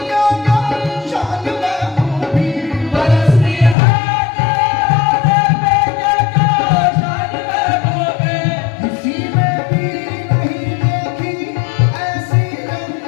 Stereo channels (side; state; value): right; drops out; at 3.8 s